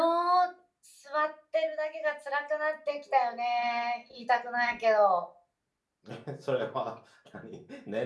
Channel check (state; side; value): identical; both; correlation 1.00